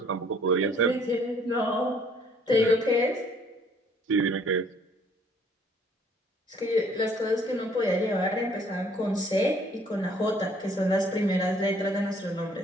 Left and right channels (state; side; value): normal; both; correlation 0.60